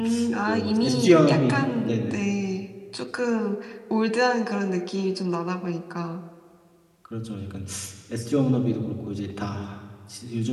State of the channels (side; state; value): both; identical; correlation 1.00